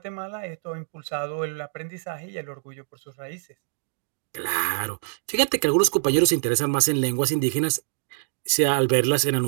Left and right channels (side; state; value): left; silent; digital silence